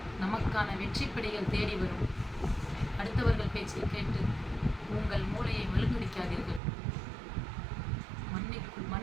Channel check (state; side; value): drops out; left; at 6.6 s